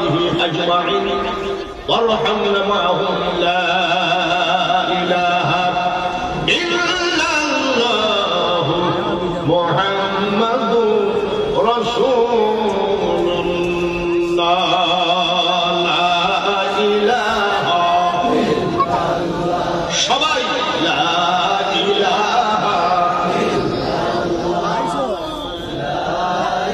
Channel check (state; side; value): identical; both; correlation 1.00